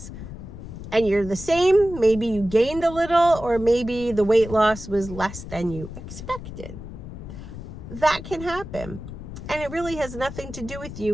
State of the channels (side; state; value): left; noise; rumble, 11 dB below the sound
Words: and you're the same, maybe you gained a little, or maybe the weight loss was less than you expected. That can happen. And it really has nothing to do with